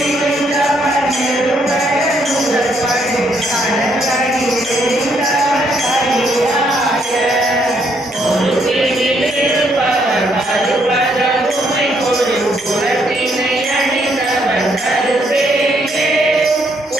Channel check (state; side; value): normal; both; correlation 0.72